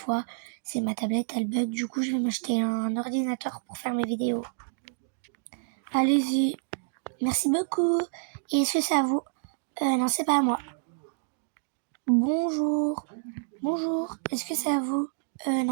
C'est ma tablette, elle bug. Du coup, je vais m'acheter un ordinateur pour faire mes vidéos. Allez-y. Merci beaucoup. Et est-ce que c'est à vous? Non, c'est pas à moi. Bonjour. Bonjour. Est-ce que c'est à vous?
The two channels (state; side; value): silent; left; digital silence